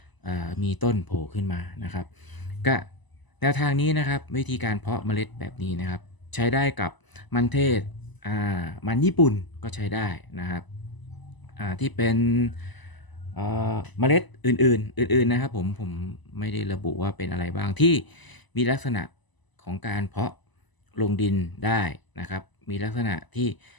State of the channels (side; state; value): right; late; 1.0 ms